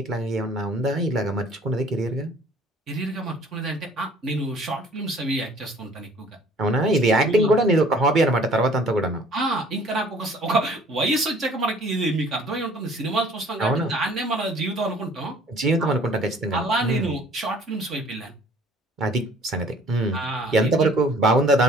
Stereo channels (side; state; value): both; normal; correlation 0.54